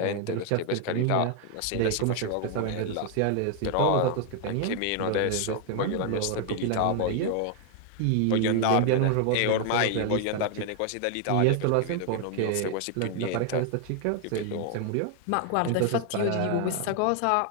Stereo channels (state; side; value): different; both; correlation 0.00